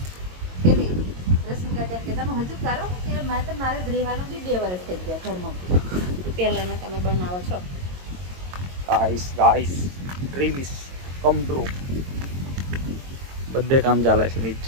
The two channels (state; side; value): late; left; 22 ms